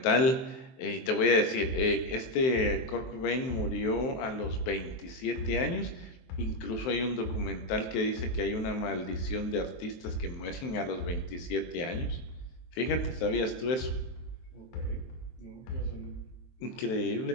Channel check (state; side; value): late; right; 23 ms